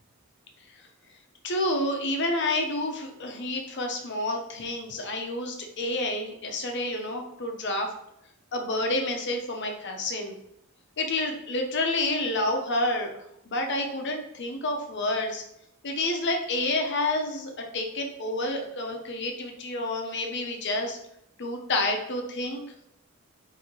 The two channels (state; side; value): normal; both; correlation -0.11